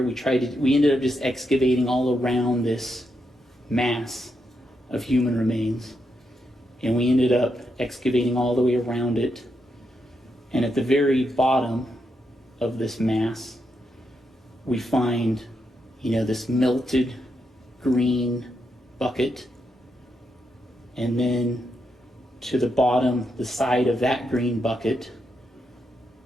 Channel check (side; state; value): both; normal; correlation 0.82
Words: we ended up just excavating all around this mass of human remains. And we ended up excavating all the way around it. And at the very bottom of this mass, we find, this melted green bucket. And then to the bottom, the side of that green bucket,